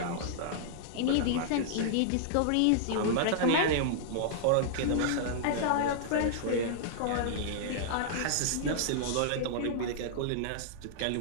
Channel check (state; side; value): different; both; correlation -0.01